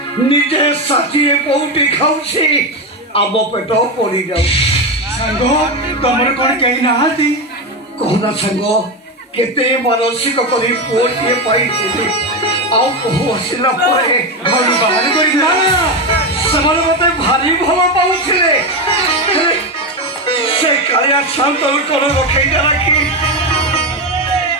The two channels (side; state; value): both; normal; correlation 0.13